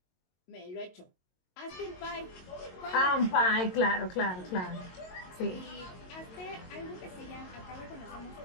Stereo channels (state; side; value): late; right; 22 ms